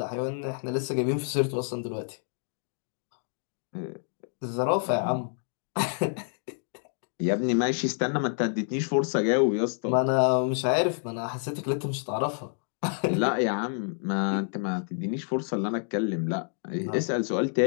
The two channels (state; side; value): silent; right; 59 dB below the other